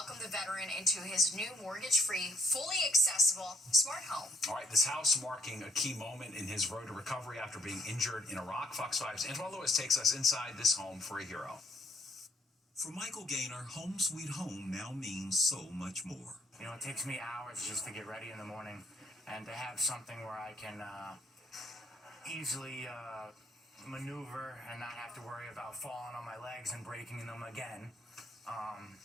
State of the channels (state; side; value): normal; both; correlation 0.65